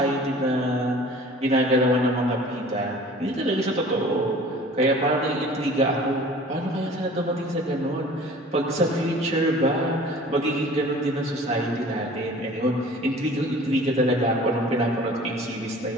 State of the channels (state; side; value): normal; both; correlation 0.46